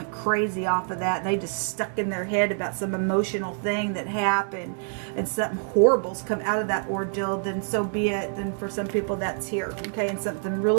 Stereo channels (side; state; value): left; silent; 61 dB below the other